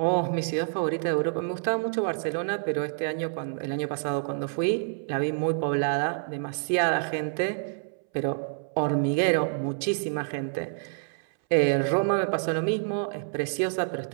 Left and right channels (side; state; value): left; silent; 60 dB below the other